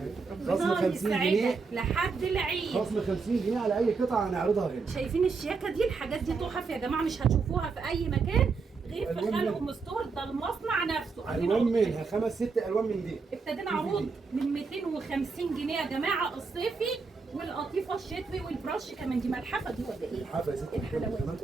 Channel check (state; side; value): quieter; left; 4.7 dB